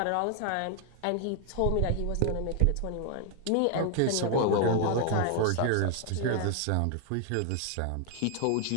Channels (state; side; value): different; both; correlation 0.00